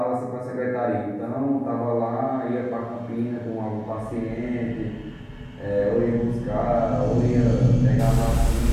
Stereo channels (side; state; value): both; identical; correlation 1.00